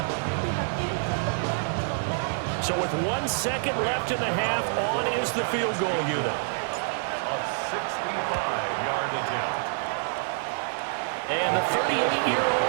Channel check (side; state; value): left; silent; digital silence